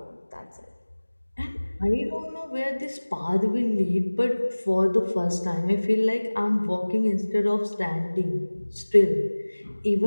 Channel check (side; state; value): both; inverted; correlation -1.00